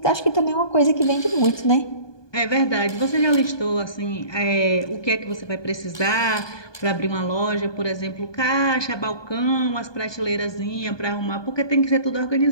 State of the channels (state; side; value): late; right; 1.2 ms